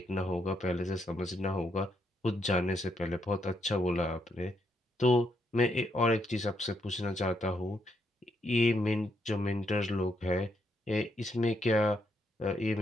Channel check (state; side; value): normal; both; correlation 0.77